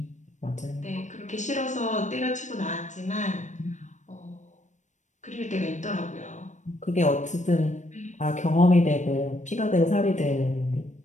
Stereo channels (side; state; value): right; late; 0.35 ms